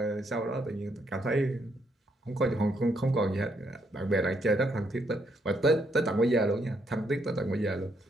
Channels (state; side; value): normal; both; correlation 0.74